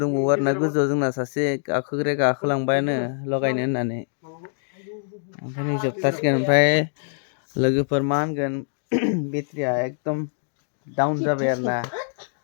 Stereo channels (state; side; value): silent; right; digital silence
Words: दंबावो आरोना गोजौआव जोंना सासे गाखोलांबायानो लगायनो होननानै ओमफ्राय नै जोबथारसिगोन ओमफ्राय लोगोफोर मा होनगोन बेटारिया एकदम डाउन जाबाय आरोना